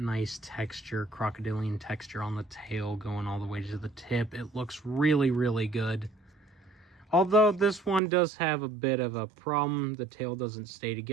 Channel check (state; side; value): drops out; left; at 8.0 s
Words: texture, crocodilian texture on the tail going all the way to the tip. It looks really, really good. Although this one does have a bit of a problem. The tail doesn't stay